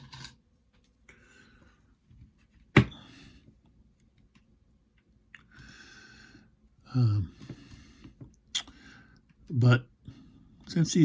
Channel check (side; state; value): both; identical; correlation 1.00